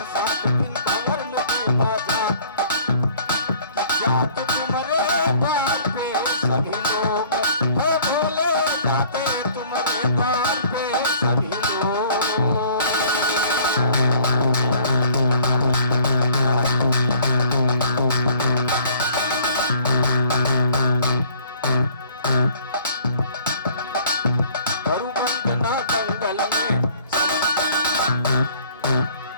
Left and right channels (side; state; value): both; inverted; correlation -0.55